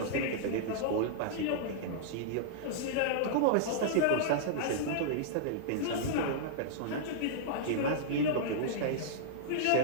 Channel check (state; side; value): different; both; correlation -0.02